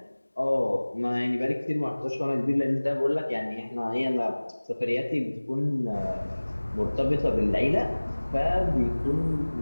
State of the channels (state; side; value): inverted; both; correlation -1.00